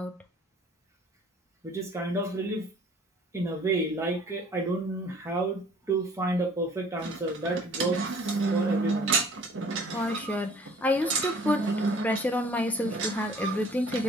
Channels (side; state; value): both; normal; correlation 0.53